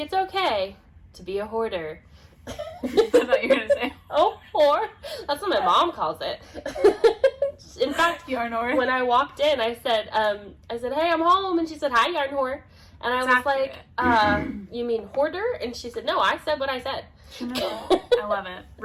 okay to be a hoarder. I thought you were going to say. Oh, whore. That's what my mom calls it. In fact, yarn whore. When I walked in, I said, hey, I'm home. And she said, hi, yarn whore. And I was like, you mean hoarder? And she said, no, I said what I said. No, I love it.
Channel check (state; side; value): identical; both; correlation 1.00